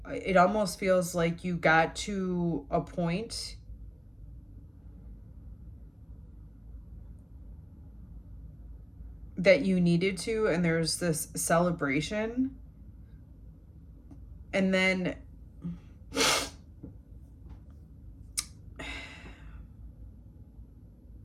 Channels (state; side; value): identical; both; correlation 1.00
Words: it almost feels like you got to a point that you needed to, and there's this celebration. And then